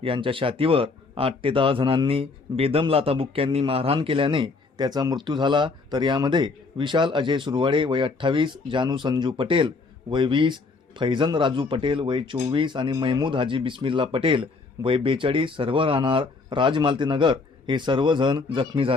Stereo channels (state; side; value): quieter; right; 4.1 dB